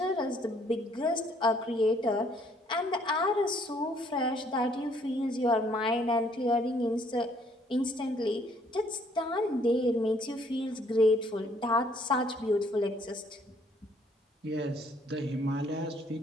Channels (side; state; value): both; normal; correlation 0.64